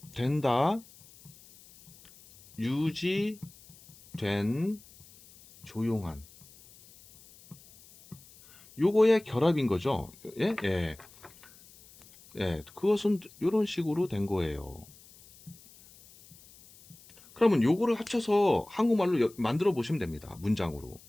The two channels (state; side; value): noise; left; hiss, 24 dB below the sound